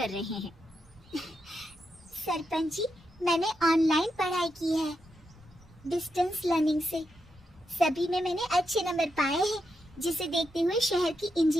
रहे हैं। सरपंच जी, मैंने ऑनलाइन पढ़ाई की है, डिस्टेंस लर्निंग से। सभी में मैंने अच्छे नंबर पाए हैं, जिसे देखते हुए शहर की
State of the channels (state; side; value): normal; both; correlation 0.84